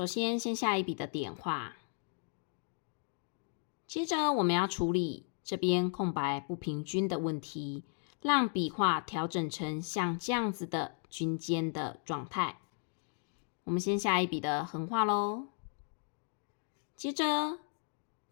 先下一笔的点画，接着我们要处理这边空白不平均的问题，让笔画调整成像这样子的均间的状态。我们先下一笔的横画咯，接着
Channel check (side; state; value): right; silent; 54 dB below the other